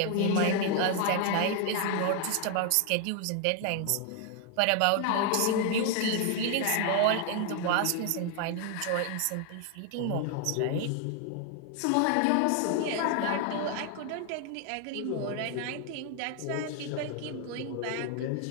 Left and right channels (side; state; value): both; different; correlation 0.01